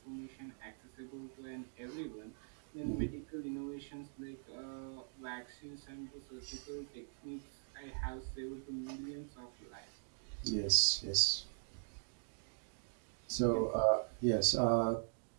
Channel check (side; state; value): left; silent; digital silence